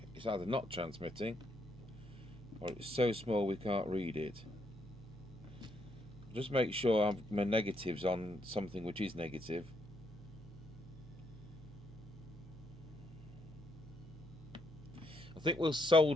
it's either not transmitting or it's so small we can't read it. Just make sure my negative's on something which is negative. I think we'll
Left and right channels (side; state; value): both; normal; correlation 0.75